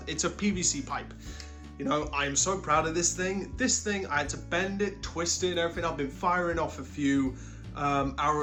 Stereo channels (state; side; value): identical; both; correlation 1.00